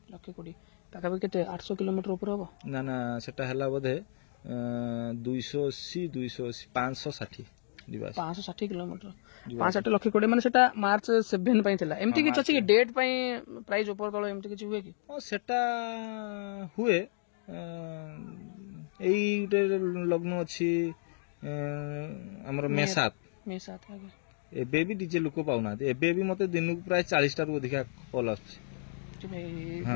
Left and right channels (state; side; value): silent; right; digital silence